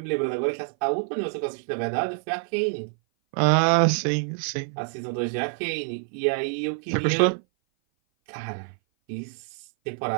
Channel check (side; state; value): left; silent; 57 dB below the other